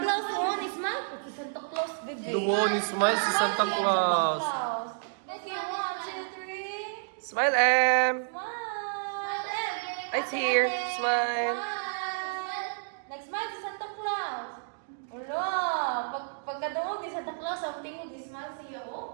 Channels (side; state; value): left; silent; digital silence